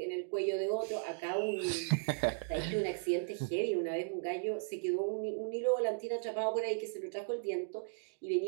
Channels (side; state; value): left; silent; digital silence